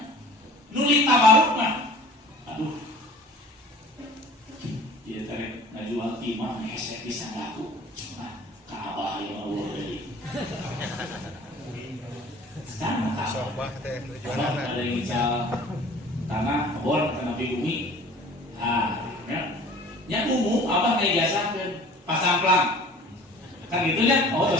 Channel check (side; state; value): both; normal; correlation 0.46